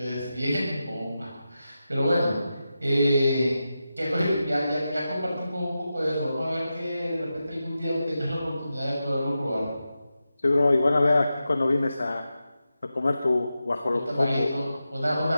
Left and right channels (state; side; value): inverted; both; correlation -0.91